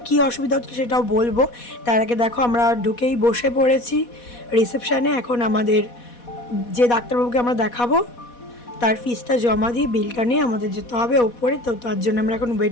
কি অসুবিধা হচ্ছিল সেটাও বলবো। তার আগে দেখো আমরা ঢুকেই বসে পড়েছি রিসেপশানে। এখন আমাদের যে ডাক্তারবাবুকে আমরা দেখাবো তার ফিসটা জমা দিয়ে বিলটা নিয়ে আমাদের যেতে হবে ওপরে। তো তার জন্য আমরা এখন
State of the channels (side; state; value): right; late; 4.1 ms